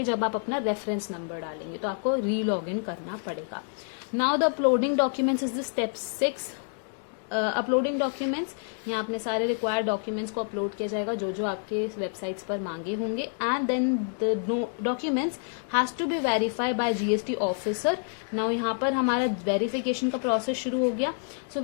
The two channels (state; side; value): silent; right; 59 dB below the other